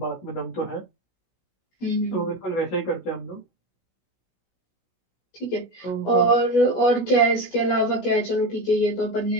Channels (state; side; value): late; right; 16 ms